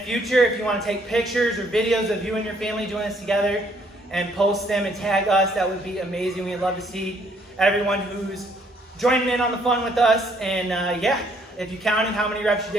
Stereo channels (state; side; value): normal; both; correlation 0.66